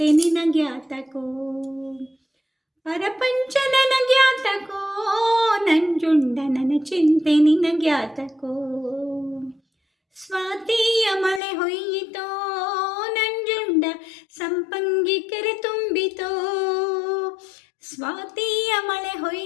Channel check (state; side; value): drops out; right; at 11.4 s